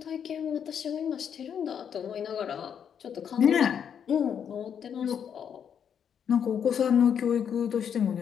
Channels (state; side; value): quieter; right; 8.1 dB